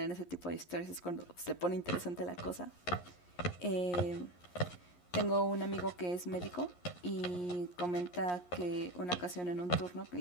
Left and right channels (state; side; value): late; right; 11 ms